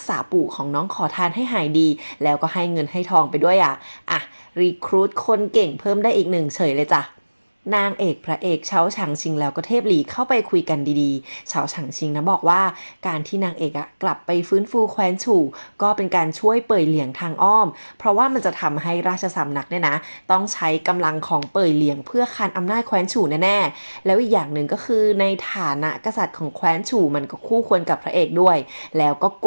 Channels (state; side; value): inverted; both; correlation -1.00